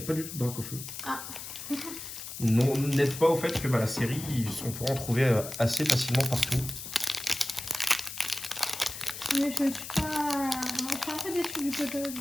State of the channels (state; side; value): noise; left; hiss, 9 dB below the sound